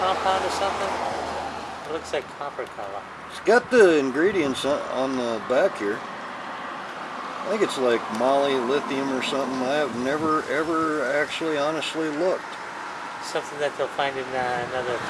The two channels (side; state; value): both; identical; correlation 1.00